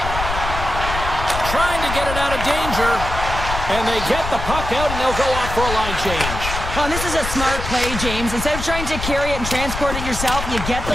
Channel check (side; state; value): left; noise; rumble, 6 dB below the sound